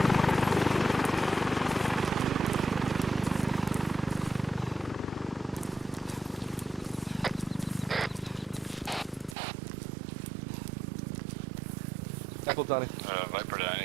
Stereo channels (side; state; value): left; drops out; at 9.3 s